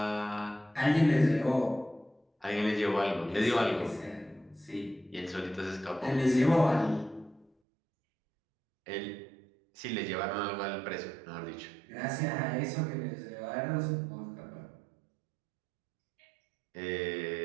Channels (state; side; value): drops out; left; at 7.5 s